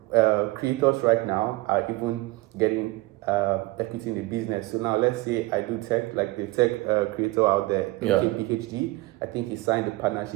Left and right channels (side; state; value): left; quieter; 20.8 dB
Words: creators right now are even getting equity in the business. So now let's say I do tech, like the tech creator out there, PhD. I think he signed a